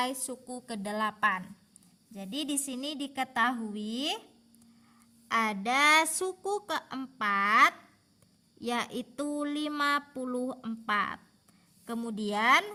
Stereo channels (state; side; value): identical; both; correlation 1.00